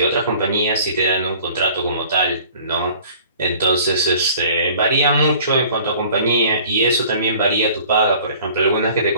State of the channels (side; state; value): both; inverted; correlation -0.50